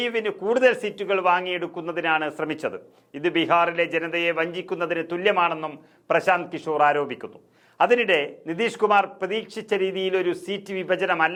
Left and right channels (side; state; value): both; identical; correlation 1.00